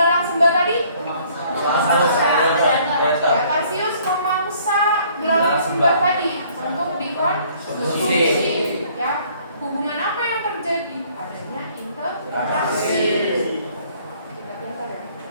sembah tadi, ya, tarsius memangsa belalang sembah tadi untuk dikonsumsi. Ya, hubungan apa yang terjadi? Adanya interaksi.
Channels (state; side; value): inverted; both; correlation -0.60